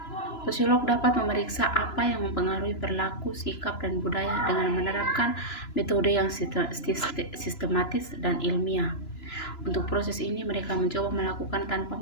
sosiolog dapat memeriksa apa yang mempengaruhi perilaku, sikap, dan budaya dengan menerapkan metode yang sistematis dan ilmiah. Untuk proses ini, mereka mencoba melakukan tanpa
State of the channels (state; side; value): late; right; 2.9 ms